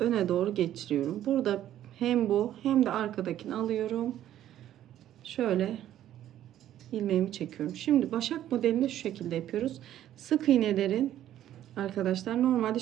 doğru geçiriyorum. Burada hem bu hem de arkadakini alıyorum. Şöyle ilmeğimi çekiyorum. Şimdi başak modelini şu şekilde yapıyoruz. Sık iğnelerin arkadaşlar normalde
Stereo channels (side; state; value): left; quieter; 12.0 dB